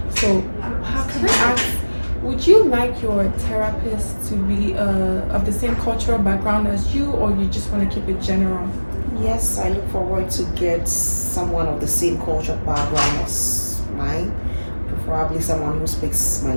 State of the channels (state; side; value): inverted; both; correlation -1.00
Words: So, how can I ask? Would you like your therapist to be of the same cultural background as you, or you just want to keep it general? Yes, I look forward to get someone of the same culture background as mine, preferably someone who speaks my